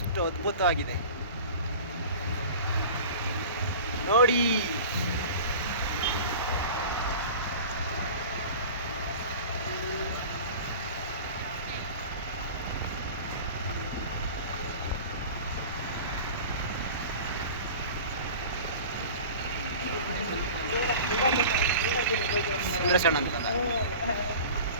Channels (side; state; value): both; inverted; correlation -0.38